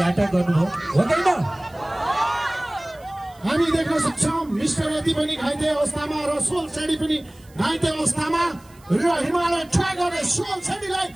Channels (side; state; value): right; noise; hiss, 28 dB below the sound